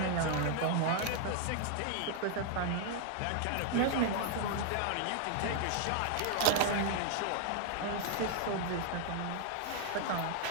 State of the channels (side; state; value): both; different; correlation 0.00